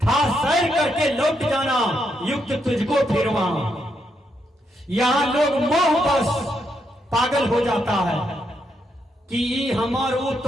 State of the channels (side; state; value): both; normal; correlation 0.79